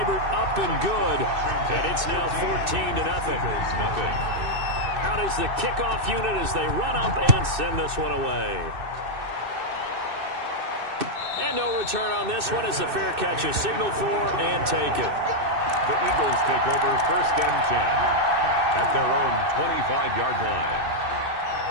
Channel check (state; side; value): late; left; 2.6 ms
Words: up and good. And it's now 14-0. Out is the kickoff unit as they run up and send this one away. And no return on this one as the fair catch is signaled for and taken. The Eagles take over 1st and 10 at their own 25-yard line.